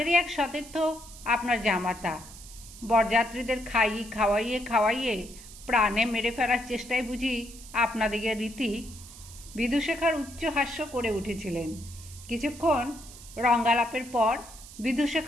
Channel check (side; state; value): right; noise; hiss, 17 dB below the sound